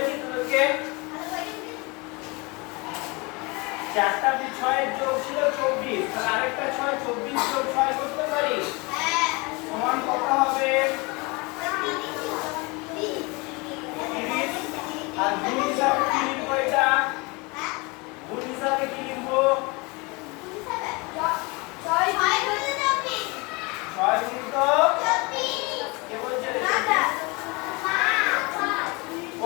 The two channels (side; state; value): right; quieter; 27.0 dB